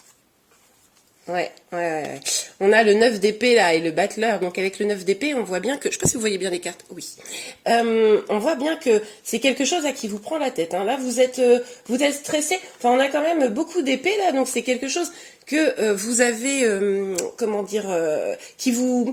Ouais. On a le 9 d'épée là et le battleur. Donc avec le 9 d'épée, on voit bien que... Je ne sais pas si vous voyez bien les cartes. Oui. On voit bien que c'est quelque chose à qui vous prend la tête. Là, vous êtes stressé. Enfin, on a quand même beaucoup d'épées là. Donc c'est quelque chose que vous avez... comment dire qui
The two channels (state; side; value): identical; both; correlation 1.00